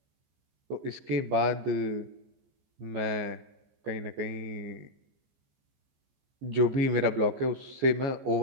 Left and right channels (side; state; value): left; late; 14 ms